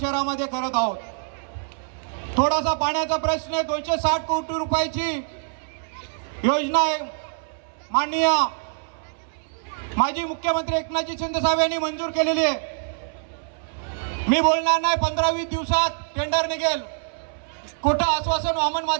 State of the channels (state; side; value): silent; left; 62 dB below the other